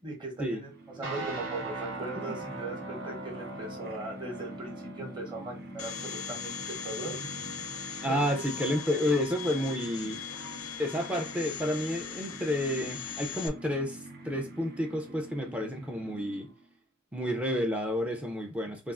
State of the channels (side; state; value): both; normal; correlation 0.56